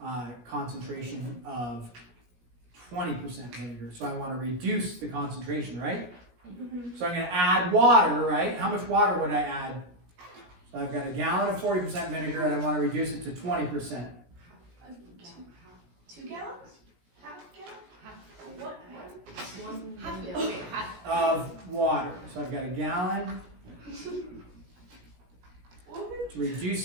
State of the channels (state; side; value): late; left; 17 ms